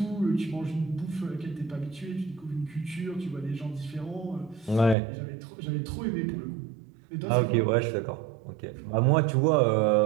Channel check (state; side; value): drops out; left; at 5.0 s